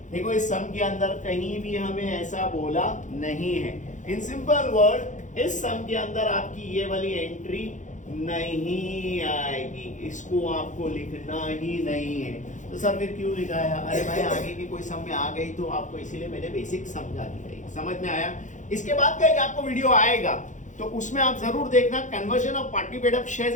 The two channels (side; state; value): right; late; 0.36 ms